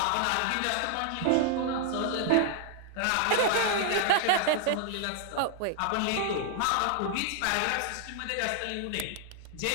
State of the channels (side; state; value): both; different; correlation 0.00